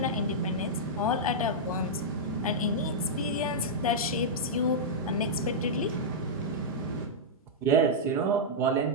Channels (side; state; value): both; normal; correlation -0.09